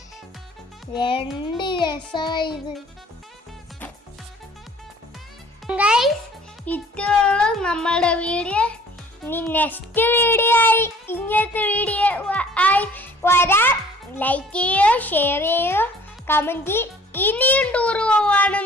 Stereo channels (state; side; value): normal; both; correlation 0.52